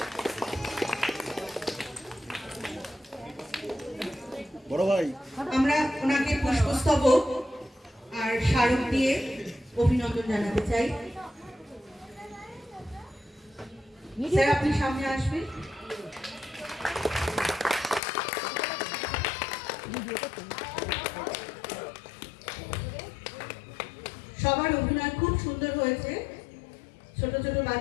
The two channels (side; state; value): right; drops out; at 18.0 s